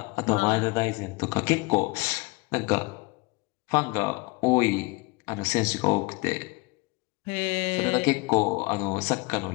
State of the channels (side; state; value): right; quieter; 25.8 dB